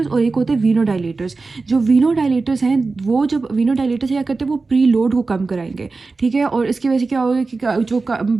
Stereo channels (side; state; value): left; quieter; 3.9 dB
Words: और एक होते हैं वीनो डायलेटर्स। जो वीनो डायलेटर्स हैं, वो जब वीनो डायलेटर्स क्या करते हैं, वो प्री लोड को कम कराएंगे, ठीक है? और इसकी वजह से क्या होगा कि जो